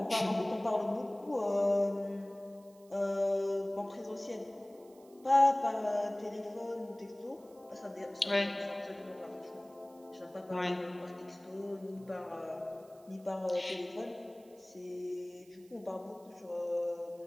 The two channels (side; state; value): right; noise; hiss, 28 dB below the sound